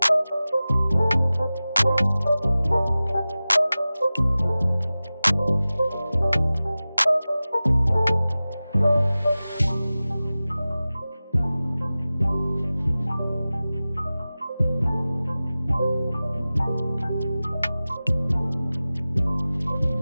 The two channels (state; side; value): inverted; both; correlation -0.97